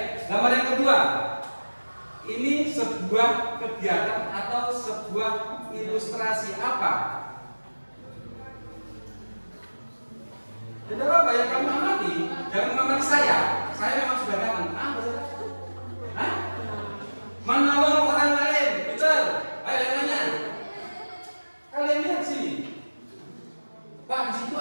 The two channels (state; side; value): inverted; both; correlation -1.00